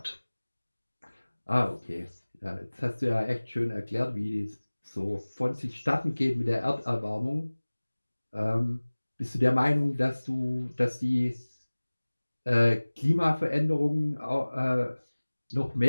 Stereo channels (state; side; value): inverted; both; correlation -1.00